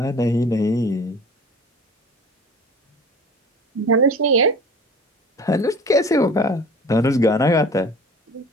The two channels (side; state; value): both; normal; correlation 0.42